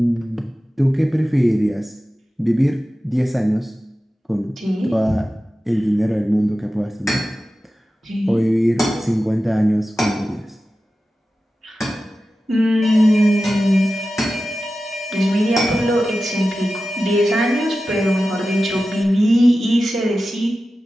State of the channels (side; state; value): both; normal; correlation 0.94